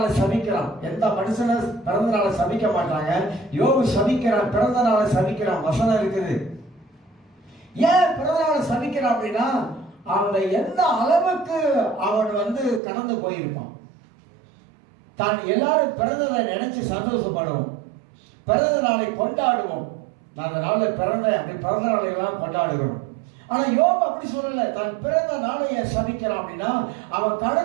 சபிக்கிறான். எந்த மனுஷனை பிறந்த நாளை சபிக்க மாட்டாங்க. யோபு சபிக்கிறான், பிறந்த நாளை சபிக்கிறான். வசனம் இருக்குது. ஏன் பிறந்த நாளை சபிக்கிறான் அப்படின்னா, அவனை எந்த அளவுக்கு அவன் கடந்து போயிருப்பான். தான் எல்லாரும் பிறந்ததை நினைச்சு சந்தோஷப்படுவோம், பிறந்த நாளை கொண்டாடுவோம். நான் அந்த நாளில் பிறந்த நாளை எல்லாம் கொண்டாடுகிறோம். ஆனா யோபு அப்படி சொல்லல. தான் பிறந்த நாளைய சபிக்கிறான் அப்படின்னா அவன்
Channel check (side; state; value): left; drops out; at 12.8 s